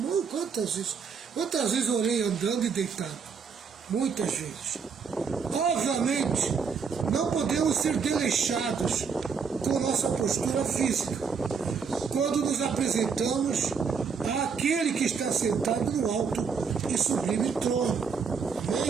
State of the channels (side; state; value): left; quieter; 5.9 dB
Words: Quantas vezes orei andando e deitado? Muitas vezes. Obviamente, não podemos ser desleixados com nossa postura física quando nos apresentamos àquele que está sentado no alto e sublime trono.